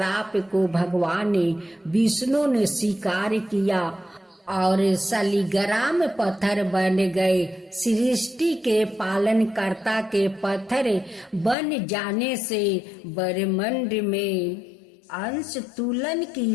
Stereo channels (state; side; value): drops out; right; at 11.6 s